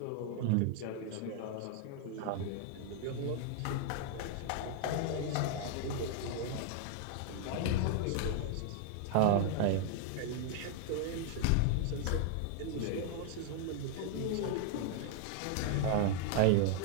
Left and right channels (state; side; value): different; both; correlation 0.00